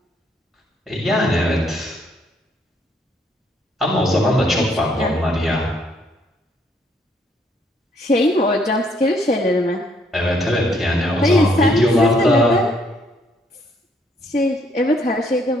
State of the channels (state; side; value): normal; both; correlation 0.69